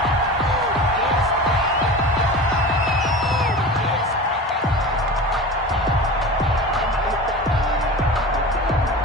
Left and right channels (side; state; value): both; normal; correlation 0.32